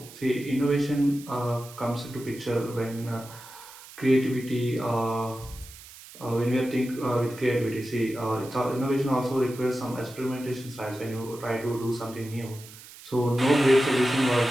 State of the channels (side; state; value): right; noise; hiss, 18 dB below the sound